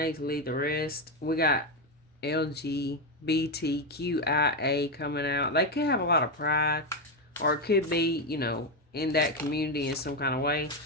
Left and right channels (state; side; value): normal; both; correlation 0.09